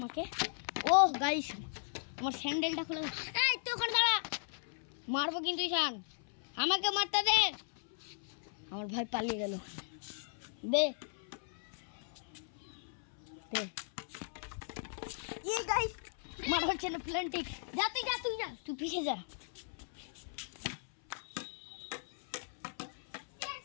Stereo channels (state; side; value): silent; right; 53 dB below the other